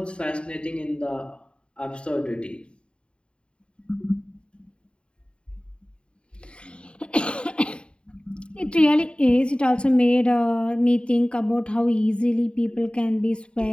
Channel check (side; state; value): right; late; 0.054 ms